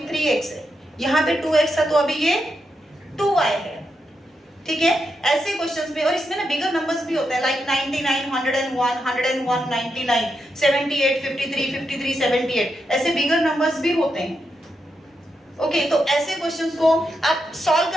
3x है, यहाँ पे 2x था तो अभी ये 2y है, ठीक है। ऐसे क्वेश्चंस में, और इसमें ना बिगर नंबर्स भी होते हैं, लाइक 99, 101, 101, 99, 78, 53, 53, 78, ऐसे बिगर नंबर्स भी होते हैं, ओके। तो ऐसे क्वेश्चंस को आप सॉल्व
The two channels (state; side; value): normal; both; correlation 0.84